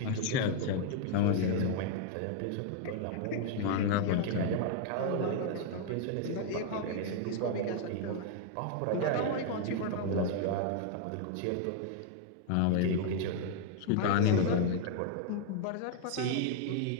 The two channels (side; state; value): both; different; correlation 0.00